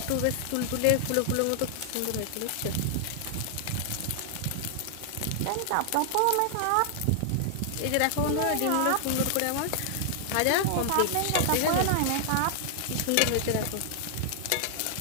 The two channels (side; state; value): both; different; correlation 0.00